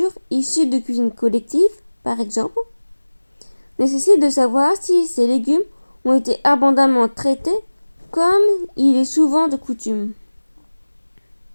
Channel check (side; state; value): both; inverted; correlation -1.00